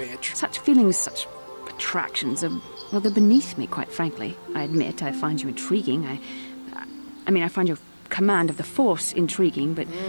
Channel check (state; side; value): inverted; both; correlation -1.00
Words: Such feelings, such attractions are, well, they're beneath me, quite frankly. I admit I find you intriguing. I find your command of the Force intriguing, but